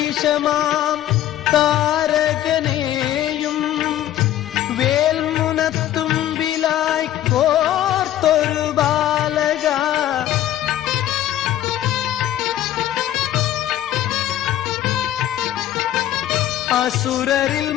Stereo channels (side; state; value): right; quieter; 12.6 dB